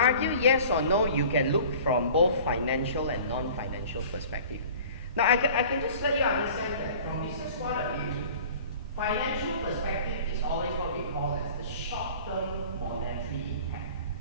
yes or no, you can look from both financial and non-financial perspective. Now, I can just let you understand that from business point of view, financial perspective is always what we call as the short-term monetary impact.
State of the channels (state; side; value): inverted; both; correlation -0.45